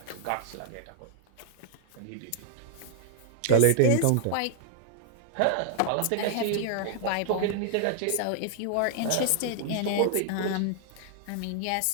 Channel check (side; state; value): both; different; correlation 0.00